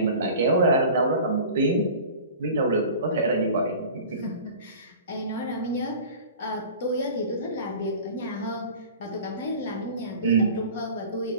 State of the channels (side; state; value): both; inverted; correlation -0.40